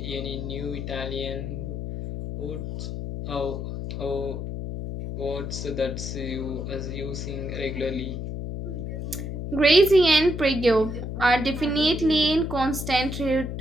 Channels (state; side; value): noise; left; hum, 5 dB below the sound